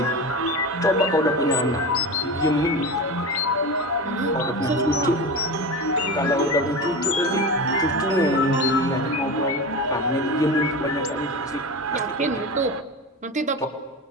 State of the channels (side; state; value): both; normal; correlation 0.25